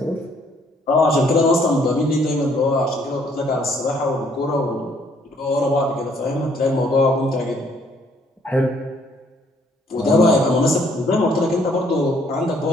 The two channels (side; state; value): both; normal; correlation 0.64